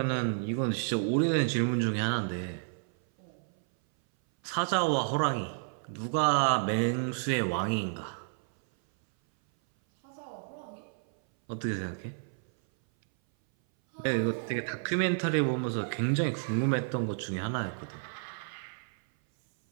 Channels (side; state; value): left; silent; 57 dB below the other